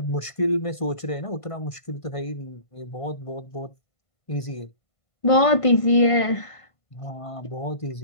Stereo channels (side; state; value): right; late; 1.5 ms